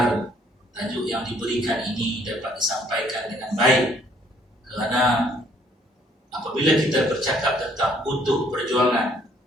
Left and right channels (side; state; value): both; normal; correlation 0.63